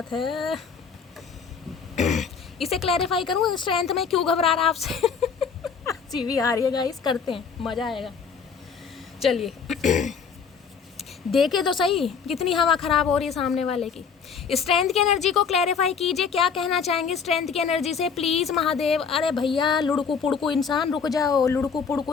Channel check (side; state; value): right; quieter; 6.1 dB